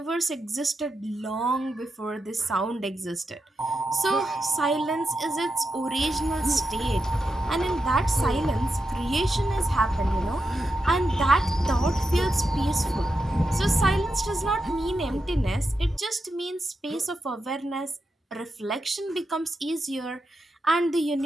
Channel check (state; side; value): normal; both; correlation 0.87